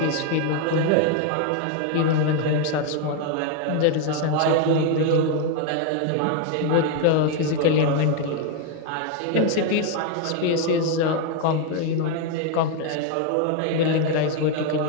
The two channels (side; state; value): both; different; correlation 0.01